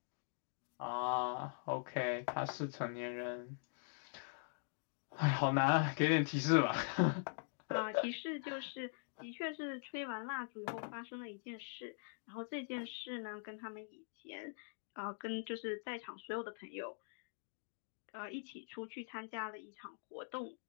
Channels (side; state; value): right; silent; digital silence